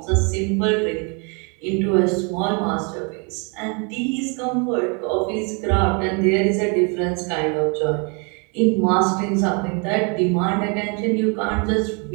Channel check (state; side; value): quieter; left; 34.5 dB